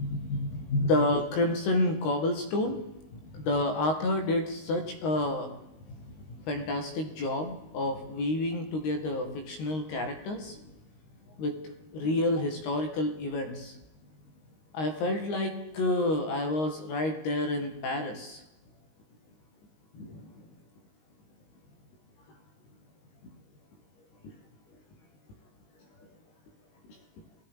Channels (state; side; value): late; right; 19 ms